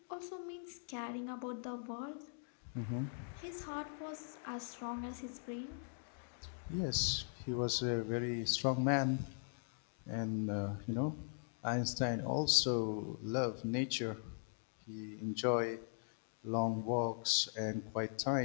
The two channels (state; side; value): silent; right; digital silence